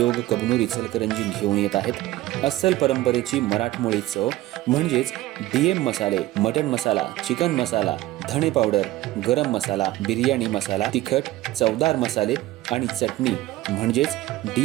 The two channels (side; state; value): left; quieter; 16.4 dB